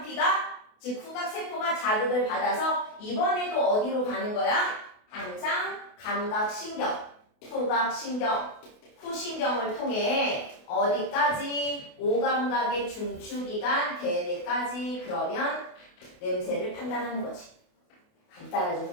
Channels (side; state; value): right; late; 28 ms